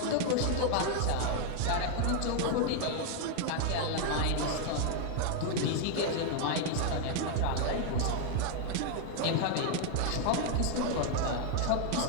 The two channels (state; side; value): different; both; correlation 0.00